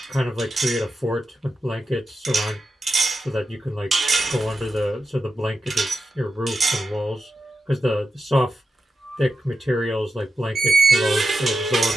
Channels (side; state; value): both; normal; correlation 0.90